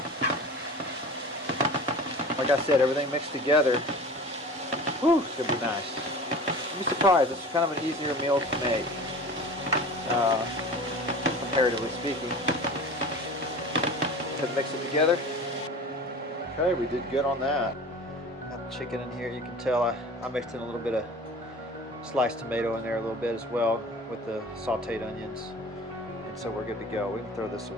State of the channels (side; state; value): both; normal; correlation 0.39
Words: Like I said, everything mixed together. Whew, it's going to be nice. You'll be surprised, it's kind of an easier meal to make, comparatively speaking. Let's mix it together. Okay, we did good on that. Got the chicken in here. You can tell I mixed in a little bit of sliced tomato in there a little bit as well with the sauteed onions. And so we're good to go. We can throw this